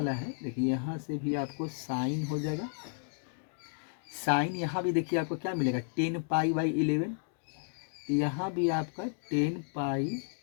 है, देखिए यहाँ से भी आपको साइन हो जाएगा। साइन यहाँ भी देखिए आपको क्या मिलेगा, 10 पाई बाई 11। तो यहाँ भी आपका 10 पाई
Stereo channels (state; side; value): silent; right; 56 dB below the other